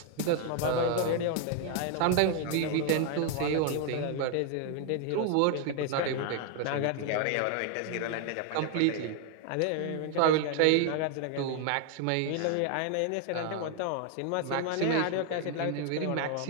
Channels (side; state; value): both; different; correlation 0.01